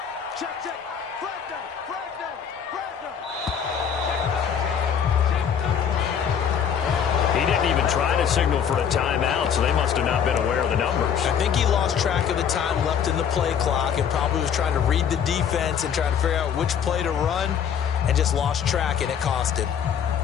He didn't even try to signal for a timeout, so they must have not been aware of the numbers. I think he lost track of the time left in the play clock and probably was trying to read the defense and trying to figure out which play to run and just lost track, and it cost him.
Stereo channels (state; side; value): quieter; right; 7.9 dB